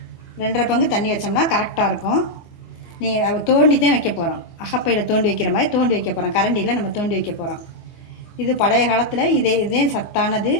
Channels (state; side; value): late; right; 24 ms